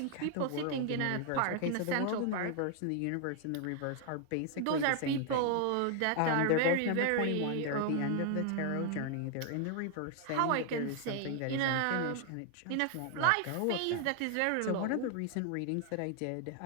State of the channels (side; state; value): both; different; correlation 0.00